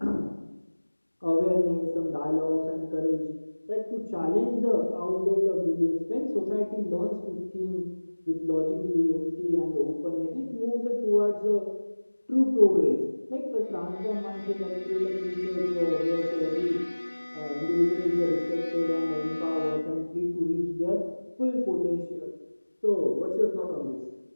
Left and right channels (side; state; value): both; inverted; correlation -1.00